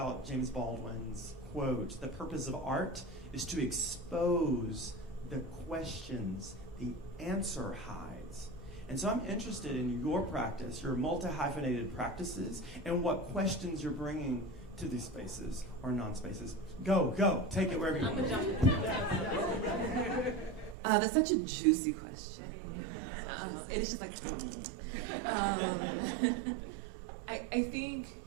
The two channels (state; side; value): drops out; left; at 20.8 s